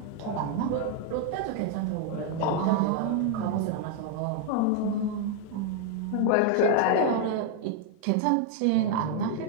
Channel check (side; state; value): both; different; correlation 0.01